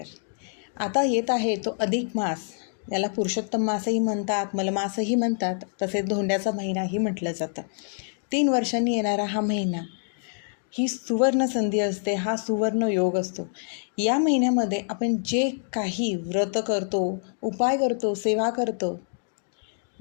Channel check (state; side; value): silent; right; digital silence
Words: आता येत आहे तो अधिक मास. याला पुरुषोत्तम मासही म्हणतात, मलमासही म्हणतात, तसेच धोंड्याचा महिनाही म्हटलं जातं. 3 वर्षांनी येणारा हा महिना ही सुवर्ण संधी असते, हा सुवर्ण योग असतो. या महिन्यामध्ये आपण जे काही व्रत करतो, उपाय करतो, सेवा करतो,